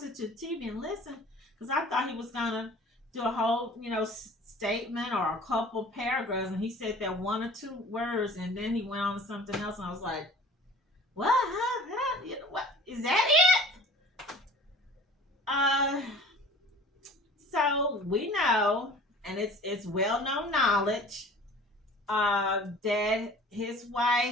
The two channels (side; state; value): both; normal; correlation 0.45